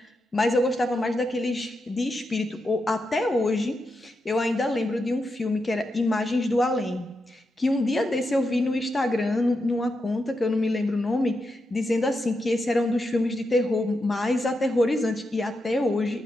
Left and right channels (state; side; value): normal; both; correlation 0.86